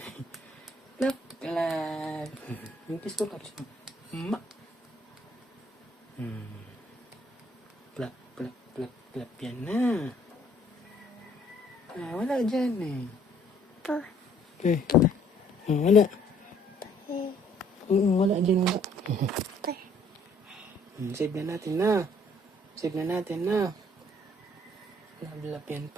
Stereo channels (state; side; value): normal; both; correlation 0.62